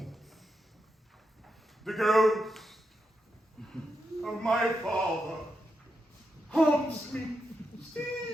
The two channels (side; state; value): both; normal; correlation 0.85